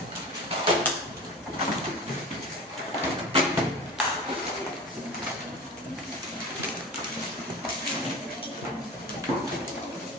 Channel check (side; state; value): both; normal; correlation 0.34